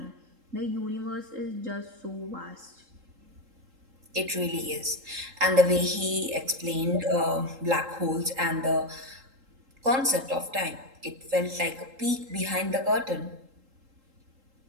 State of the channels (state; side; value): late; left; 3.8 ms